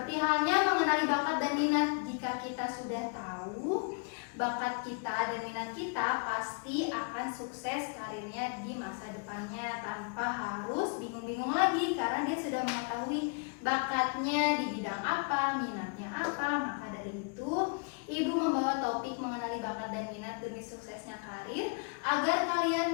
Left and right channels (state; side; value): quieter; right; 37.6 dB